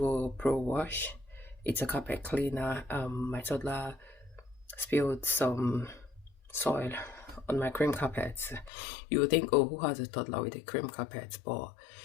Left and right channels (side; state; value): right; drops out; at 8.7 s